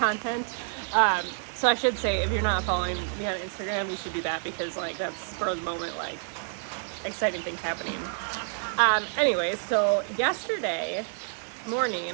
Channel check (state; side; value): silent; left; 59 dB below the other